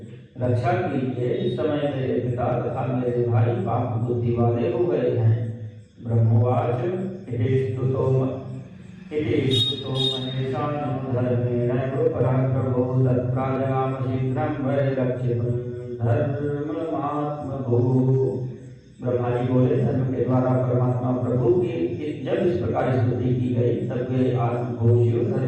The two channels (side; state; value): both; identical; correlation 1.00